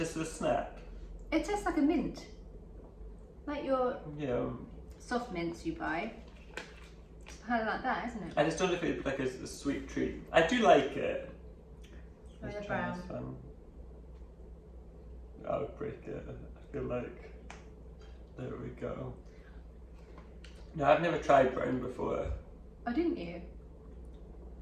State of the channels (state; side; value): identical; both; correlation 1.00